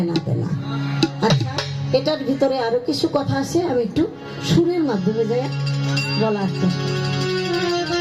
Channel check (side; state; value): both; identical; correlation 1.00